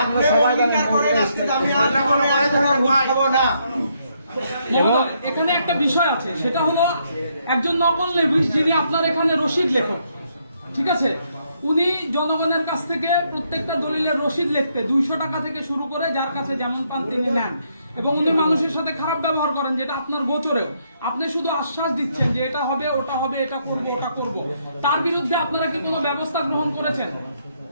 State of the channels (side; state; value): both; inverted; correlation -0.74